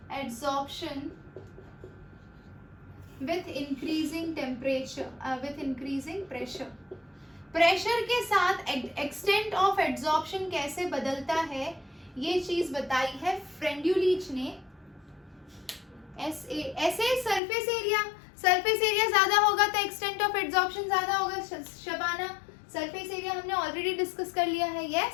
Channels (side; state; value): right; drops out; at 17.4 s